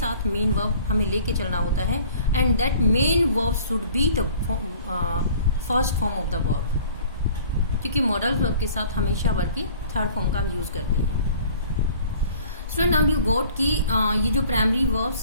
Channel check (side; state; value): both; inverted; correlation -0.50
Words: मेन वर्ब हमें लेके चलना होता है, and that main verb should be the first form of the verb, क्योंकि मॉडल वर्ब के साथ हमेशा वर्ब की थर्ड फॉर्म का हम यूज करते हैं। स्टूडेंट, नाउ यू गॉट कि ये जो प्राइमरी